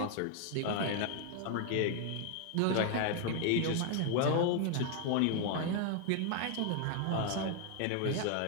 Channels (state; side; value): different; both; correlation 0.00